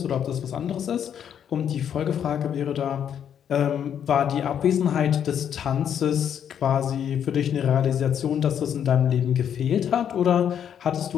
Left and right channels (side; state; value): right; quieter; 8.9 dB